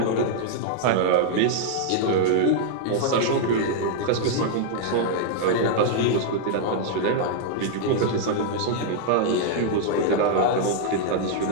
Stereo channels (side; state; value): both; different; correlation -0.01